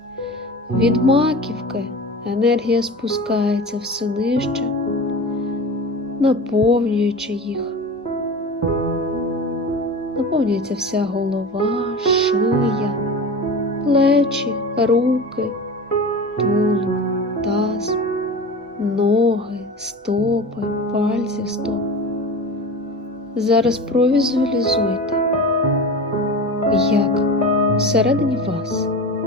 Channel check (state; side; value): normal; both; correlation 0.32